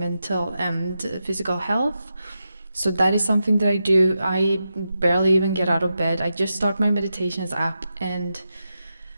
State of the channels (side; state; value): both; inverted; correlation -0.88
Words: and physical health. So that is something that I do. I barely even get out of bed. I just start my meditations app and